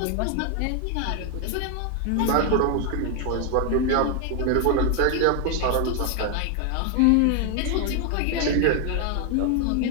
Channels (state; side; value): different; both; correlation 0.00